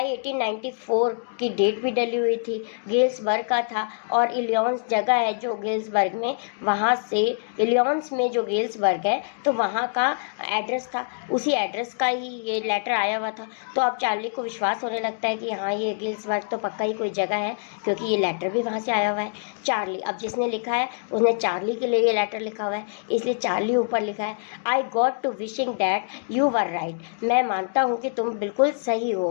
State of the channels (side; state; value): right; silent; digital silence